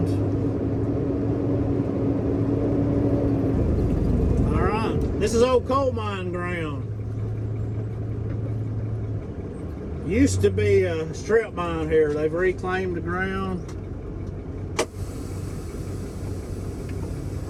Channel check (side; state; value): both; identical; correlation 1.00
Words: All right, this is old coal mine ground. Used to be a strip mine here. They've reclaimed the ground.